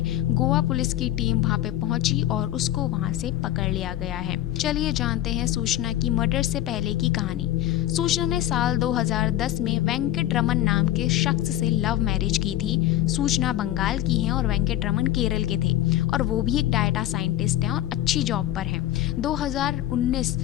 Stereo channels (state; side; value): quieter; right; 13.5 dB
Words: गोवा पुलिस की टीम वहां पे पहुंची और उसको वहां से पकड़ लिया गया है। चलिए जानते हैं सूचना की मर्डर से पहले की कहानी। सूचना ने साल 2010 में वेंकट रमन नाम के शख्स से लव मैरिज की थी। सूचना बंगाल की है और वेंकट रमन केरल के थे और वो भी एक डाटा साइंटिस्ट हैं और अच्छी जॉब पर हैं। 2019